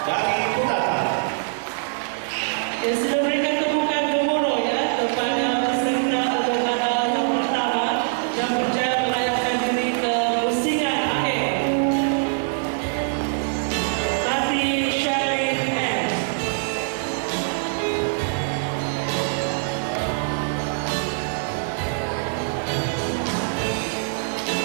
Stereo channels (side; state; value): left; silent; digital silence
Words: dari Putara. Ya, sudah berikan tepukan gemuruh ya kepada peserta daripada yang pertama yang berjaya melayakkan diri ke pusingan akhir. Tati Sherlyn R.